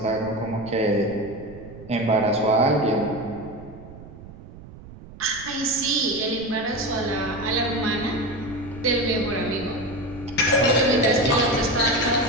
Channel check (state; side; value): noise; right; rumble, 17 dB below the sound